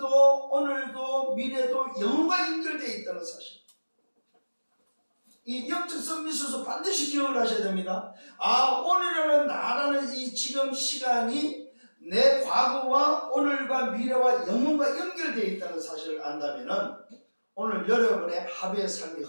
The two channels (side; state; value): both; inverted; correlation -1.00